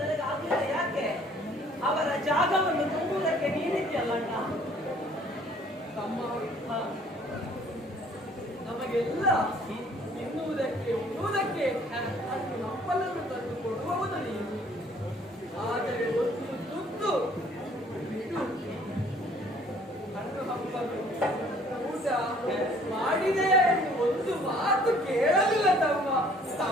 ಆಗಲಿಲ್ಲ. ಯಾಕೆ? ಅವರ ಜಾಗವನ್ನು ತುಂಬುವುದಕ್ಕೆ ನೀನಿದ್ಯಲ್ಲ ಅಣ್ಣ. ತಮ್ಮ ನಮಗೆಲ್ಲ ತಿನ್ನುವುದಕ್ಕೆ ಉಣ್ಣುವುದಕ್ಕೆ ಅಷ್ಟು ನಪ್ಪಲನ್ನು ತಂದು ಕೊಡುವವನು ನೀನು. ಆದರೆ ಒಂದು ತುತ್ತು ಬಿಡು. ಕಣ್ಣು ಹಬ್ಬಲು ಊಟ ಮಾಡಿದೆಯಾ ಎಂದು ಒಂದು ಮಾತು ಕೇಳಲಿಲ್ಲ ತಮ್ಮ.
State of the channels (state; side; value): normal; both; correlation 0.57